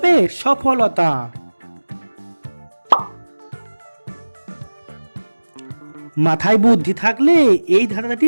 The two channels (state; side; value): inverted; both; correlation -1.00